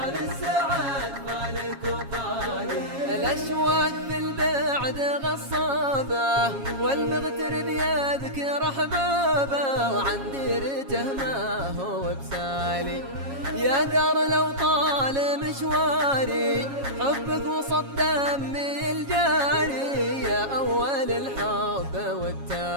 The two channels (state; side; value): late; left; 7.3 ms